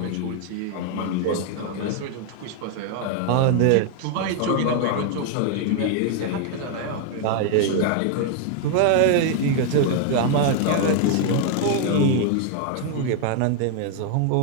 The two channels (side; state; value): both; different; correlation 0.00